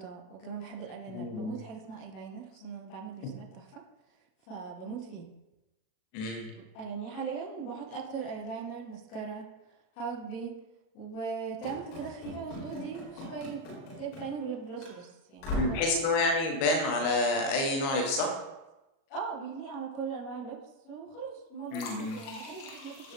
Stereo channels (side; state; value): right; late; 37 ms